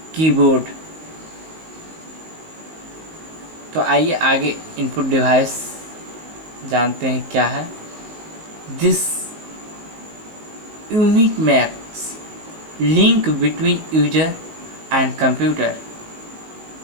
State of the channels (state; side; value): late; left; 19 ms